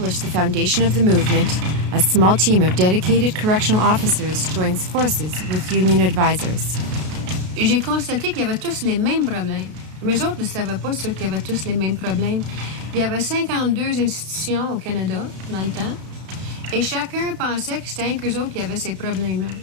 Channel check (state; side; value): late; left; 33 ms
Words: the foundation of the movement, a small team of dedicated correctional officers joins forces with union advisors. Et j'ai constaté qu'il y avait tous les mêmes problèmes. Mais eux autres ne savaient pas ceux qui avaient tous les mêmes problèmes. Il y avait 52 institutions au Canada dans le temps. Et chacun pensait que c'était un qu'eux autres qui avaient ces problèmes-là.